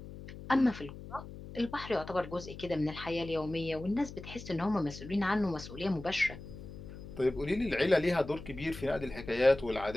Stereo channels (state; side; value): noise; left; hum, 13 dB below the sound